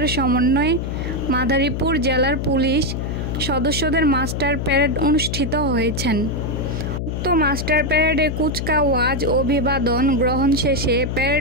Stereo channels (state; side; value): noise; left; hum, 3 dB below the sound